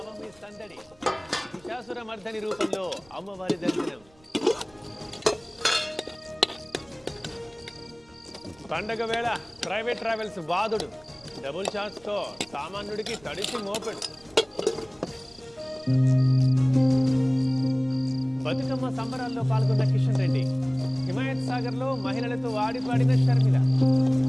పండగ వేళ ప్రైవేట్ ట్రావెల్స్ బాధుడు డబుల్ ఛాన్స్తో సామాన్యుడికి తడిసి మోపెడు. బతుకమ్మ సంబరాల్లో పాల్గొన్న కిషన్ రెడ్డి, హిమాయత్ సాగర్లో మహిళలతో ఆడిపాడిన షర్మిల.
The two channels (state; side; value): noise; right; rumble, 29 dB below the sound